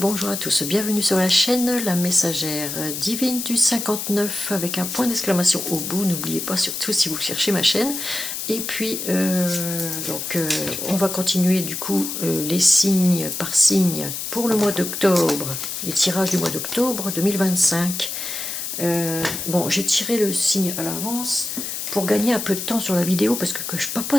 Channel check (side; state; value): left; noise; hiss, 5 dB below the sound